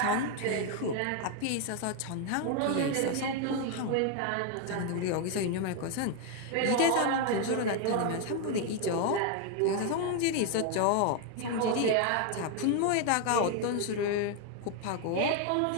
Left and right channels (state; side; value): different; both; correlation 0.01